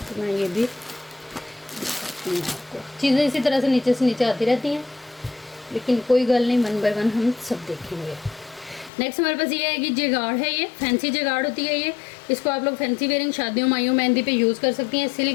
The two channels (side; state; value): right; drops out; at 8.9 s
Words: तो मैं ये भी चीज़ें इसी तरह से नीचे आती रहती हैं, लेकिन कोई गल नहीं, वन बाय वन हम सब देखेंगे। नेक्स्ट हमारे पास ये आएगी जेगाड़ है, ये फैंसी जेगाड़ होती है ये। इसको आप लोग फैंसी वेयरिंग शादियों माइयों मेहंदी पे यूज़ कर सकती हैं।